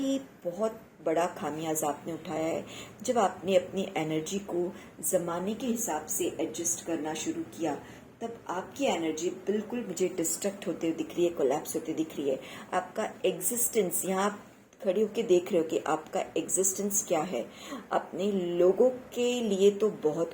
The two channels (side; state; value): both; identical; correlation 1.00